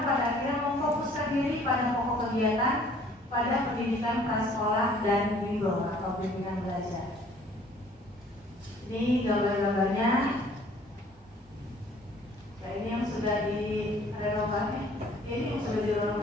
pada akhirnya memfokuskan diri pada pokok kegiatan pada pendidikan prasekolah dan bimbel atau bimbingan belajar. Ini gambar-gambarnya. Ya, ini yang sudah direnovasi. Ini yang sudah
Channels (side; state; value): both; normal; correlation 0.56